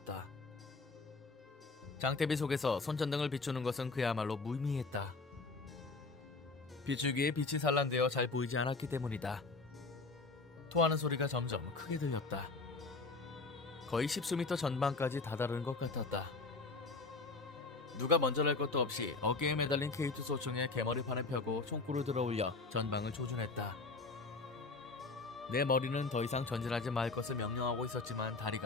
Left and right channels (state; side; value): quieter; right; 3.8 dB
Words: 장대비 속에서 손전등을 비추는 것은 그야말로 무의미했다. 비추기에 빛이 산란되어 잘 보이지 않았기 때문이다. 토하는 소리가 점점 크게 들렸다. 거의 10수미터 전방까지 다다른 것 같았다. 누가 먼저 날 것도 없이 어깨에 매달린 K2 소총에 개머리판을 펴고 총구를 들어올려 전방을 조준했다. 내 머리는 더 이상 전진하지 말 것을 명령하고 있었지만